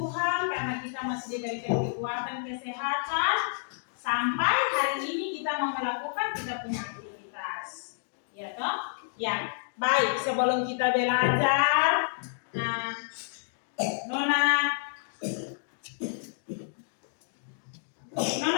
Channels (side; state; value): right; silent; digital silence